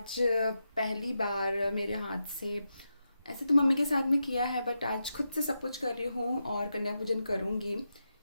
पहली बार मेरे हाथ से, ऐसे तो मम्मी के साथ में किया है, बट आज खुद से सब कुछ कर रही हूँ और कन्या पूजन करूँगी।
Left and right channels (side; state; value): both; inverted; correlation -0.87